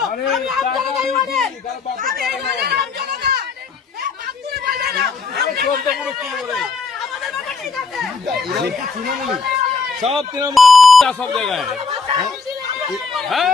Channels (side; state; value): right; quieter; 4.7 dB